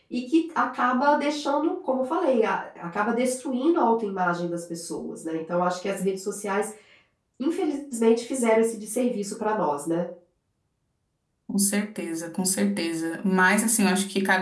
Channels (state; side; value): identical; both; correlation 1.00